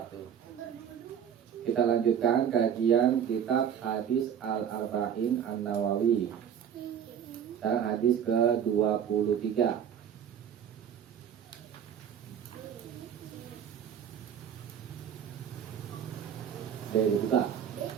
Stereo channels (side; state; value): left; quieter; 8.7 dB